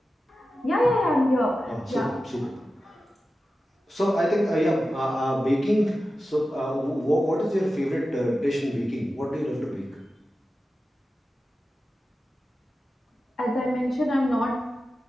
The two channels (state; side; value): normal; both; correlation 0.93